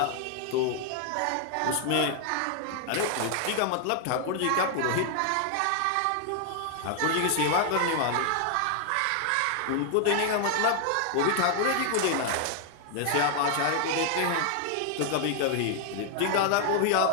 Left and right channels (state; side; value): different; both; correlation 0.00